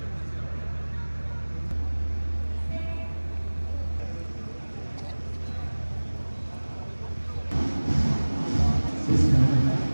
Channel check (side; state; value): both; inverted; correlation -1.00